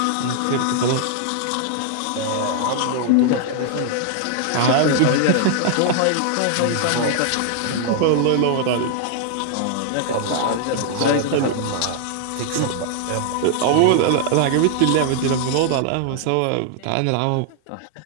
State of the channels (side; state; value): both; different; correlation 0.00